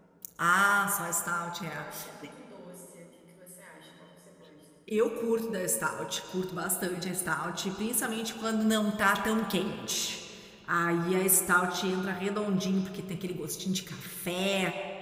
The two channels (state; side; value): identical; both; correlation 1.00